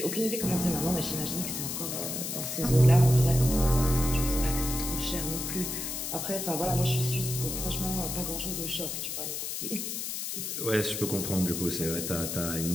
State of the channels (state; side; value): noise; left; hiss, 4 dB below the sound